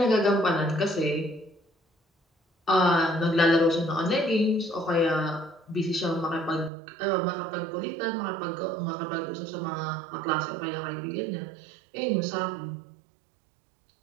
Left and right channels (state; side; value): drops out; left; at 6.7 s